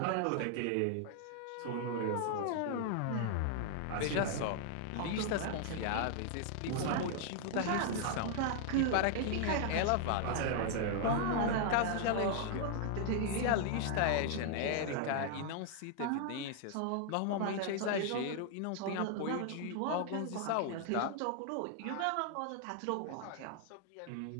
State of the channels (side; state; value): both; different; correlation 0.00